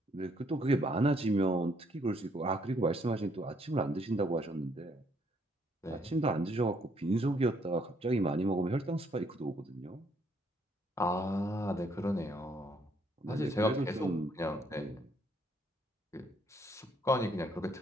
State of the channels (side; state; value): both; normal; correlation 0.68